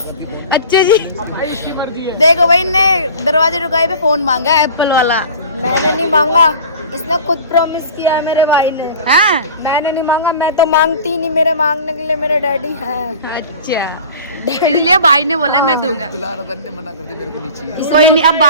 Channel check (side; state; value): both; inverted; correlation -0.40